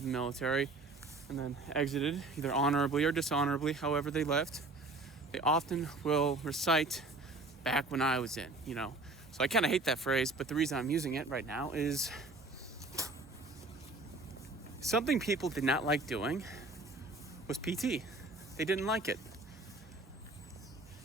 the military and then exited, either honorably or dishonorably, however they left, they often will recite back when I was in, So I kind of hate that phrase, but the reason I'm using it right now is something people did not like doing was PT. They didn't like it.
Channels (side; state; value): left; quieter; 3.1 dB